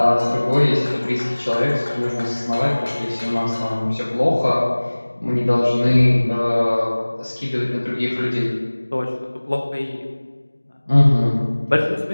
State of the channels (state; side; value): inverted; both; correlation -1.00